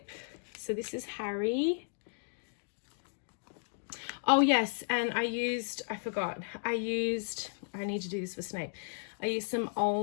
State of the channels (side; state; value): right; silent; digital silence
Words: So this is Harry. Oh yes, and I need to do this for Snape. I used some